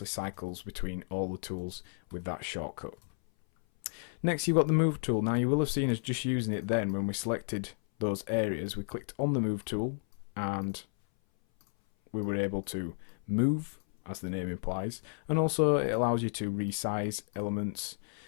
cycles between all the tools with that shortcut. Next, you've got the Move tool. Now, you will have seen us just using it then when we selected those areas. We clicked on the Move tool, and we were able to move, as the name implies, and also it allows you to resize elements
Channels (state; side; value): silent; right; 56 dB below the other